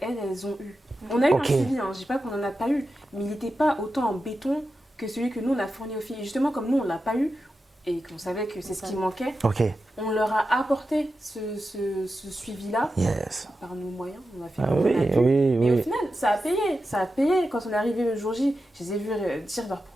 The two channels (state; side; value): normal; both; correlation 0.91